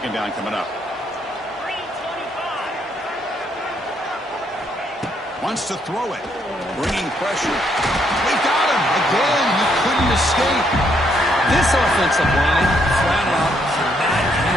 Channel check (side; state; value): both; normal; correlation 0.73